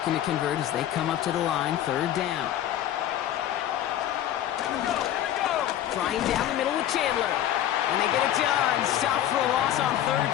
to convert as they come up to the line, 3rd down. Trying down the middle with Chandler. And they get it done. Stop for a loss on 3rd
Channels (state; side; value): quieter; right; 11.7 dB